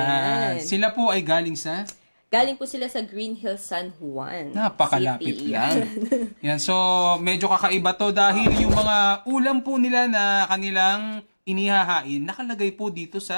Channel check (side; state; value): both; inverted; correlation -1.00